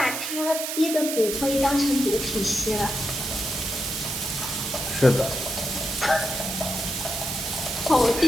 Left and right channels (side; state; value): right; noise; hiss, 3 dB below the sound